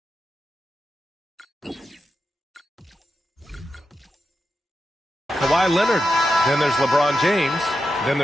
Kawhi Leonard. Then there's LeBron James. Then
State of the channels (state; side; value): normal; both; correlation 0.88